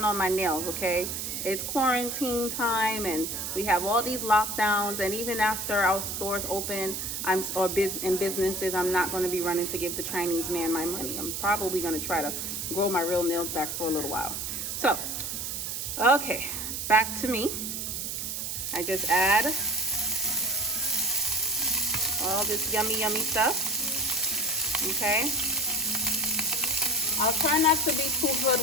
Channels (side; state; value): right; noise; hiss, 4 dB below the sound